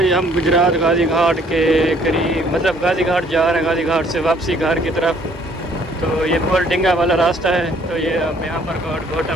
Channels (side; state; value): both; normal; correlation 0.61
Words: हम गुजरात गाजी घाट के करीब, मतलब गाजी घाट जा रहे हैं, गाजी घाट से वापसी घर की तरफ। तो ये पुल डिंगा वाला रास्ता है। तो ये अब यहाँ पर घोटा